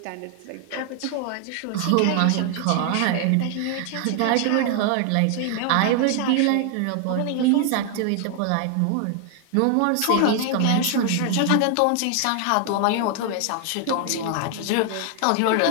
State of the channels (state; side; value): different; both; correlation 0.00